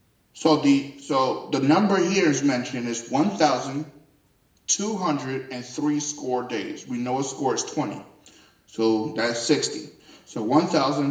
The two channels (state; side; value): identical; both; correlation 1.00